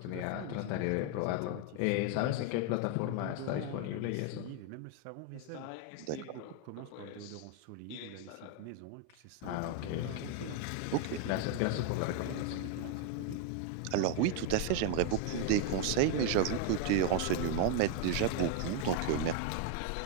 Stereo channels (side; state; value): both; different; correlation 0.01